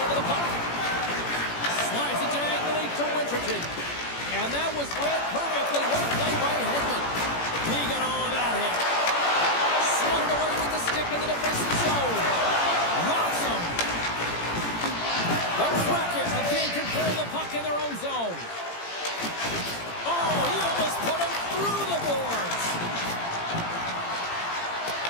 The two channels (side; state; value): right; late; 17 ms